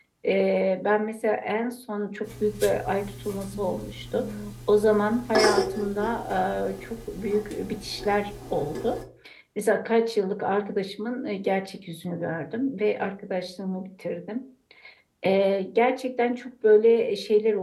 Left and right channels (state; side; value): identical; both; correlation 1.00